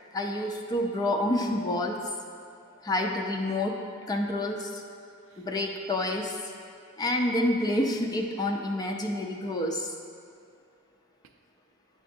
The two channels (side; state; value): both; normal; correlation 0.51